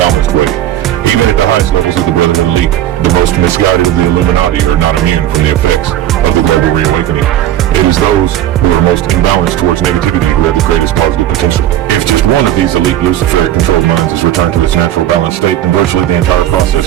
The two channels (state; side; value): quieter; left; 12.4 dB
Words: way. Even at the highest levels of the Brotherhood elite, the most misguided of the Illuminati are not immune from the effects of the global reawakening. It is those who are most imbalanced towards negativity who have the greatest positive potential. If just one of these elite Luciferic controlled minds is returned to its natural balanced state, then virtually the entire